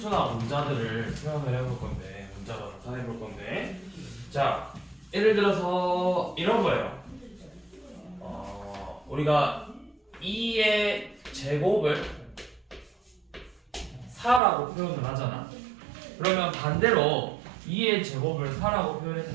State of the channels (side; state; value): left; drops out; at 14.4 s